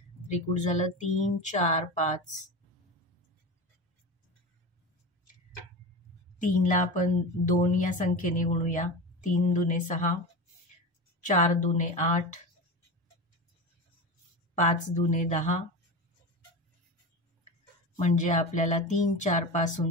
त्रिकूट झालं 3, 4, 5. 3 ला आपण 2 या संख्येने गुणूया. 3 दुने 6, 4 दुने 8, 5 दुने 10. म्हणजे आपल्याला 3, 4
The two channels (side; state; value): both; normal; correlation 0.26